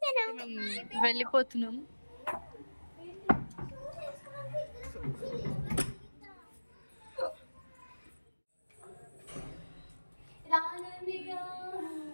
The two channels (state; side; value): inverted; both; correlation -1.00